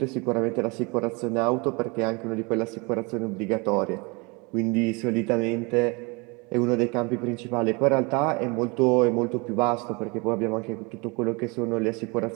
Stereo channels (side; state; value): left; quieter; 28.6 dB